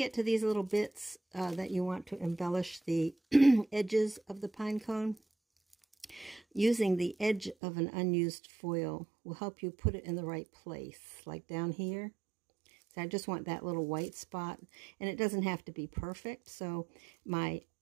to these little bits that you want to embellish the edges of the pine cone, using the edge of an unused foil will help you put it in the right place, like down here. So I just want that little white spot, and it doesn't have to be perfect. So my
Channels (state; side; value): drops out; left; at 7.6 s